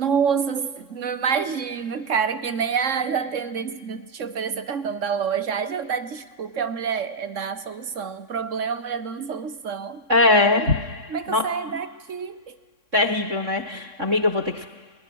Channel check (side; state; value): left; late; 3.6 ms